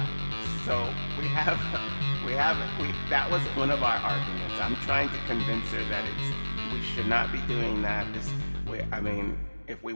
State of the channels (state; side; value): inverted; both; correlation -1.00